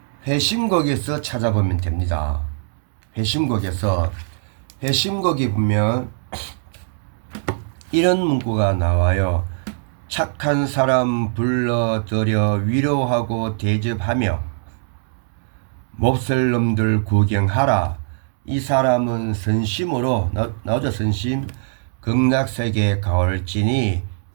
회심곡에서 찾아보면 됩니다. 회심곡에 보면 이런 문구가 나와요. 착한 사람 불러들여 위로하고 대접하며 몹쓸 놈들 구경하라. 이 사람은 선심으로 나오죠. 선심 극락세계 가올지니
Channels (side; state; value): left; silent; digital silence